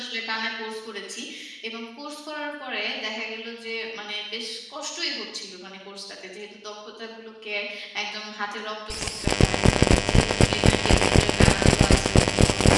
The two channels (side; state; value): both; identical; correlation 1.00